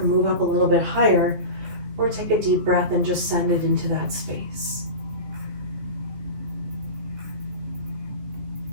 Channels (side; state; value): left; late; 15 ms